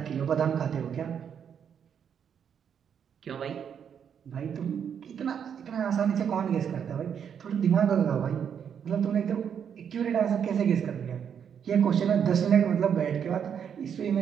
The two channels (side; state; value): left; quieter; 7.9 dB